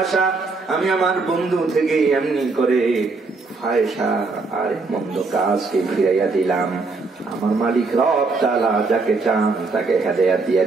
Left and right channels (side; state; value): left; quieter; 3.9 dB